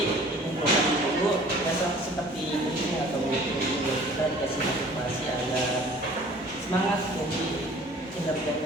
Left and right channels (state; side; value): normal; both; correlation 0.50